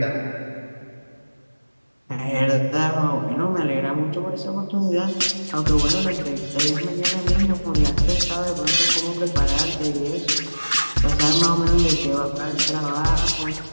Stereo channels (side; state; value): both; inverted; correlation -1.00